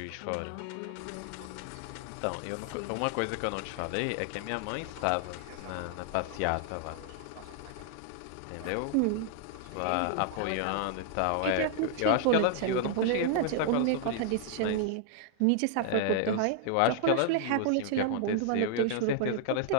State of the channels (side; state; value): both; different; correlation 0.00